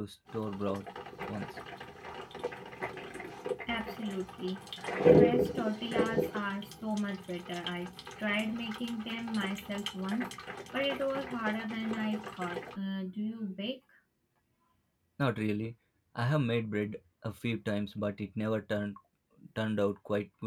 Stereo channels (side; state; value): both; identical; correlation 1.00